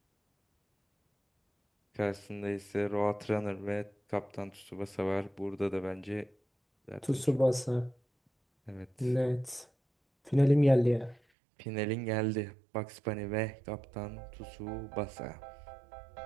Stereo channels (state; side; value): drops out; left; at 11.2 s